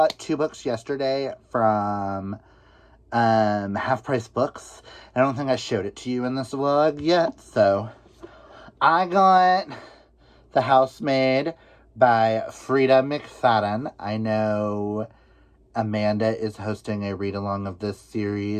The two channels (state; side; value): identical; both; correlation 1.00